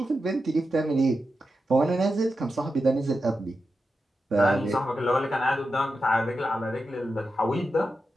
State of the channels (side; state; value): both; normal; correlation 0.90